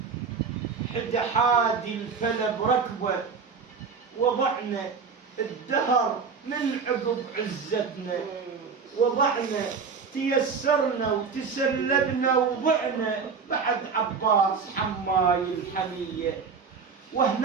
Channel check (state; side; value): quieter; left; 5.5 dB